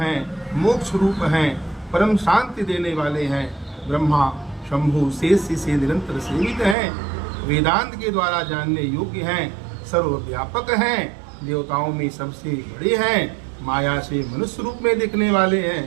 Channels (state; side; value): drops out; left; at 6.8 s